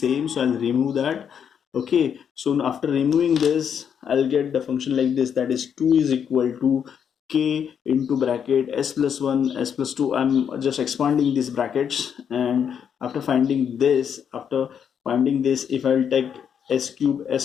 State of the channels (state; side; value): quieter; right; 7.9 dB